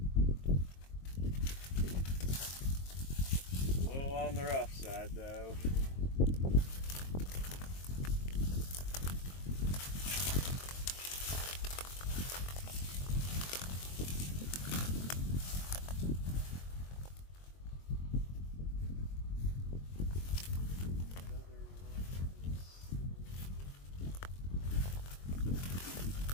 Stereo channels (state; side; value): late; right; 22 ms